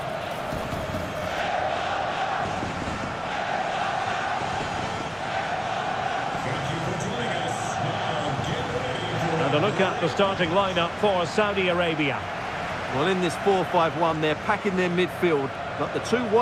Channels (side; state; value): both; identical; correlation 1.00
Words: And a look at the starting lineup for Saudi Arabia. Well, in this 4-5-1, they're packing their midfield, but the two